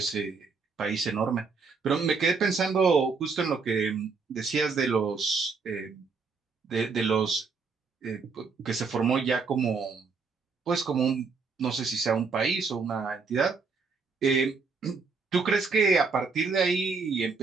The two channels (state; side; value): quieter; left; 4.8 dB